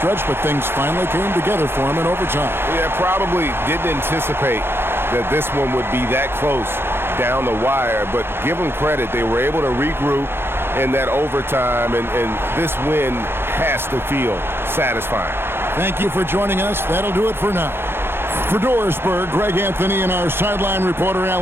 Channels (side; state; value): left; late; 0.11 ms